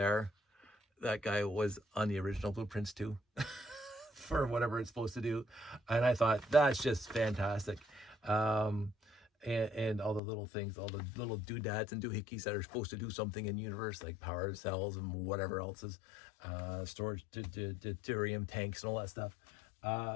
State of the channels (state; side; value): drops out; right; at 10.2 s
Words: guy was on the original blueprints too, for whatever it's supposed to do, and I thought that's just fantastic. And all the little things, all the little doodads and doohickeys that are supposed to do something in the universe, like power cells and whatever else is, storage, deuterium tanks and all that stuff,